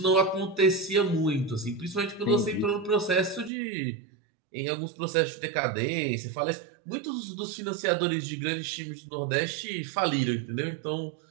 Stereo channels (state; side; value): drops out; left; at 3.5 s